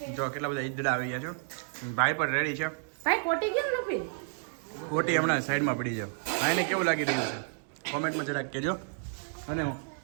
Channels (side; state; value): left; silent; digital silence